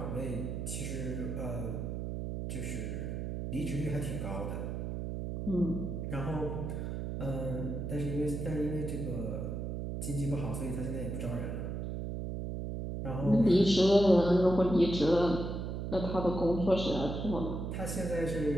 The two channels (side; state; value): right; noise; hum, 4 dB below the sound